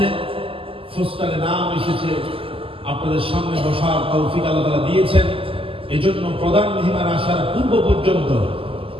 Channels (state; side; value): late; left; 0.26 ms